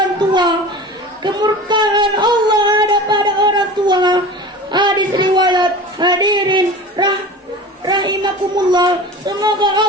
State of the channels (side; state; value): both; normal; correlation 0.36